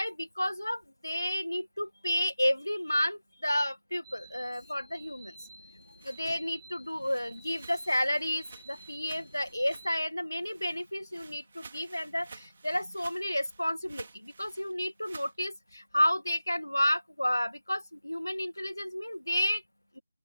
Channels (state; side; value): inverted; both; correlation -0.96